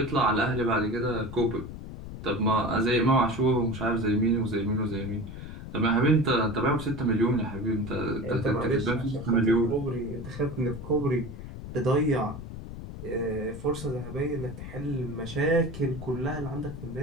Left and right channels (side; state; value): left; noise; rumble, 11 dB below the sound